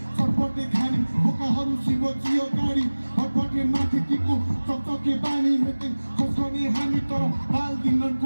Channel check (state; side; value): inverted; both; correlation -1.00